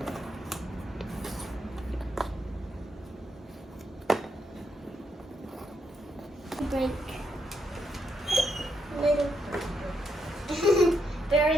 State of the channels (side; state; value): both; normal; correlation 0.79